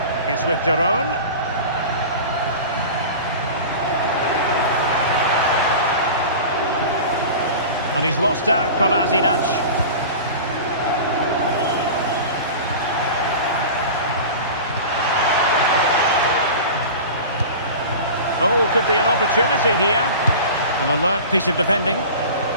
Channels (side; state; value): both; inverted; correlation -0.34